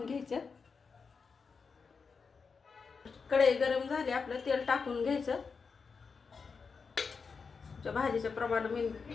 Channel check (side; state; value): right; quieter; 5.2 dB